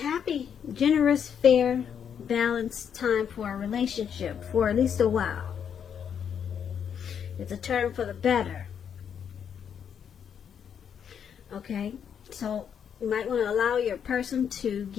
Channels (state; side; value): quieter; right; 8.0 dB